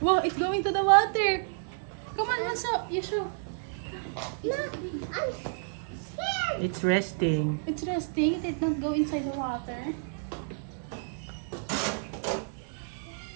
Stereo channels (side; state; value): left; silent; digital silence